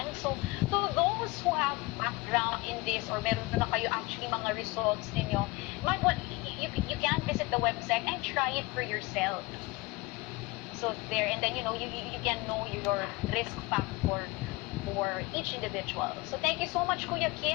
So to those who have background in this or meron na kayo actually mga results ninyo, you can visit the website and try it for yourself. So there, and then you can know your risk factor for each individual. So thank you so much, Kuya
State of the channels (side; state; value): right; quieter; 23.1 dB